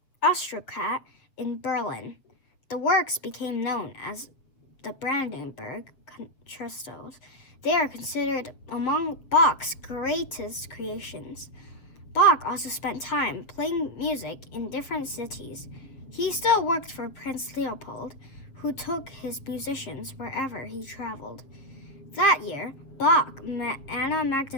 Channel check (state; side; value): late; right; 7.4 ms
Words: aristocrat in Berlin. The works became known as the Brandenburg Concertos. They are considered among Bach's greatest creations. Bach also spent time playing music in different cities. He still worked for Prince Leopold, who took his musicians wherever he traveled. That year, Bach met Anna